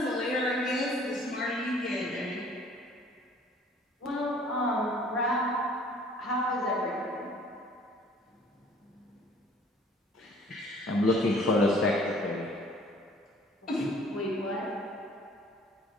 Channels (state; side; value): normal; both; correlation 0.54